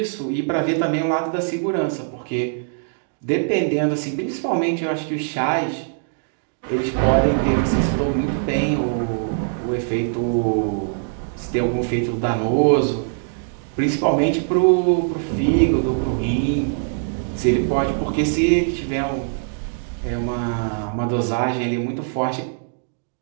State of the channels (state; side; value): silent; left; digital silence